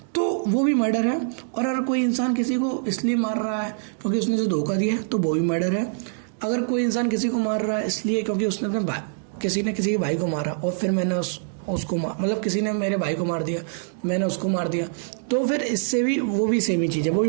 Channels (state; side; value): silent; left; digital silence